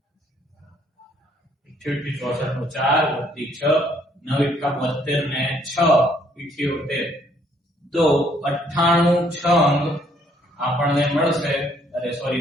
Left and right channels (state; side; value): normal; both; correlation 0.65